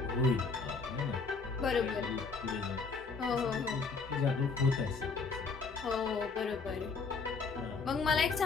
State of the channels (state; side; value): quieter; right; 4.6 dB